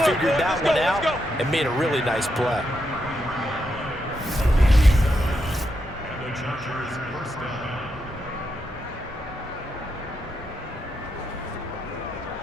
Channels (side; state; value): both; normal; correlation 0.83